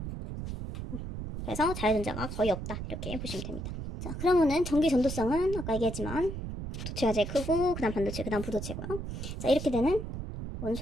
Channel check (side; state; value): right; noise; rumble, 6 dB below the sound